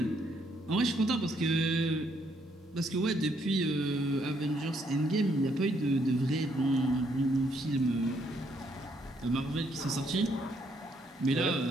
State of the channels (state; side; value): normal; both; correlation 0.71